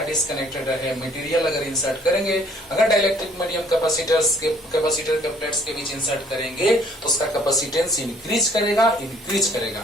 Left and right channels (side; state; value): both; normal; correlation 0.59